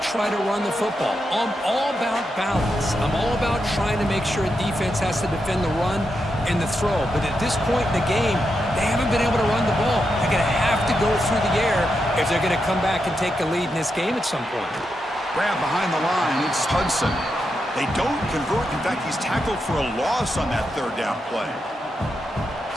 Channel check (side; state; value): both; normal; correlation 0.85